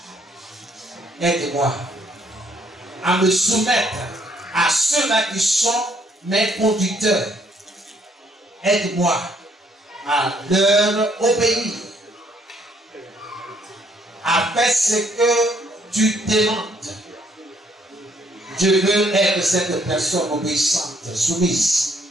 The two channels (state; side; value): normal; both; correlation 0.67